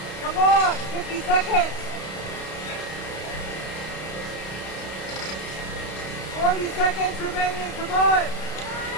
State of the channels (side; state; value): right; late; 32 ms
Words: Come on! 50 seconds! 40 seconds remaining, come on!